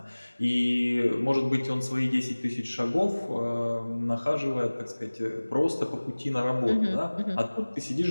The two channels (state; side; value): inverted; both; correlation -1.00